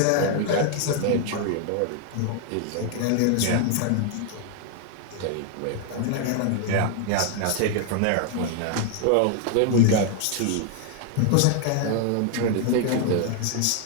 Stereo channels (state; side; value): different; both; correlation 0.00